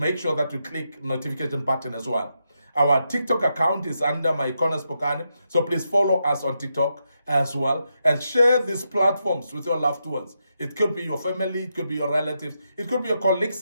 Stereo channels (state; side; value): inverted; both; correlation -0.84